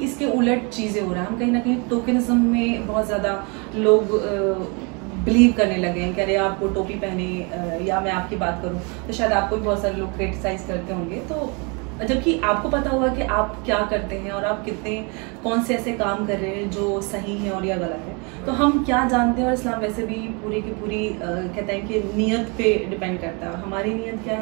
इसके उलट चीज़ें हो रहा है, हम कहीं ना कहीं टोकनिज्म में बहुत ज़्यादा लोग बिलीव करने लगे हैं कि अरे आप वो टोपी पहने या मैं आपकी बात करूं तो शायद आपको भी बहुत सारे लोग क्रिटिसाइज करते होंगे। तो जबकि आपको पता होगा कि आप क्या करते हैं और आप कितने कौन से ऐसे काम कर रहे हैं जो सही है और या गलत है। तो हम क्या जानते हैं, और इस्लाम वैसे भी पूरी की पूरी कहता है कि नीयत पे डिपेंड करता है, और हमारी नीयत क्या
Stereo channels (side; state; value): left; quieter; 32.3 dB